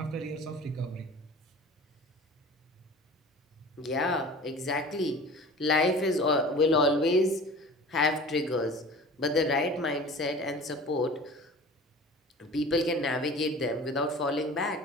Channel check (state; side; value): normal; both; correlation 0.41